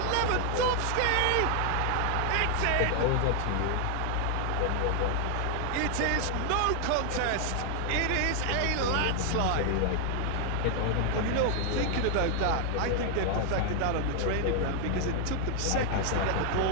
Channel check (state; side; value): different; both; correlation 0.00